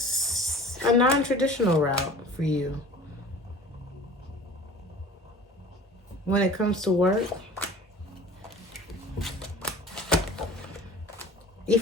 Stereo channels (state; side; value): normal; both; correlation 0.42